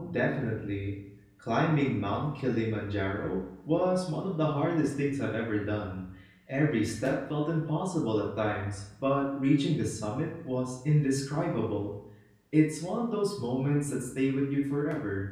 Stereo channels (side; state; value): both; identical; correlation 1.00